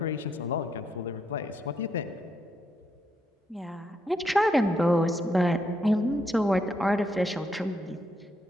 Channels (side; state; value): both; normal; correlation 0.78